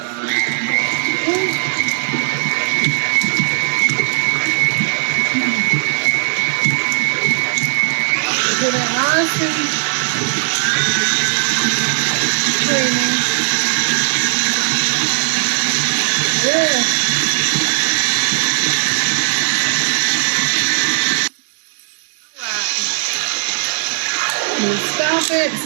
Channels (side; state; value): left; silent; digital silence